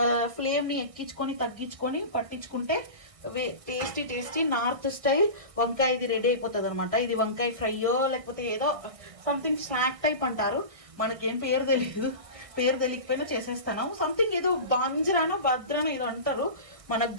ఫ్లేమ్ని ఎక్కించుకొని తగ్గించుకొని పట్టించుకుంటే టేస్టీ నార్త్ స్టైల్ వంకాయ ఇది రెడీ అయిపోతుంది అనమాట. ఇది వంకాయ ఫ్రైయో లేకపోతే ఏదో సంథింగ్ స్నాక్ టైప్ అంటారు, మనకేం పేరు తెలియదు. పేరు తెలియకపోయినా చేసేస్తాను. సంథింగ్ ఏదో బాంజ్రానో భద్రానో ఏదో అంటారు, మనకు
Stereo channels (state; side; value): late; left; 1.6 ms